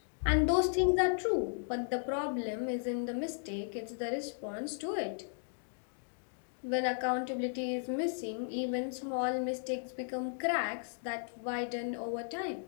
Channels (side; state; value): right; silent; digital silence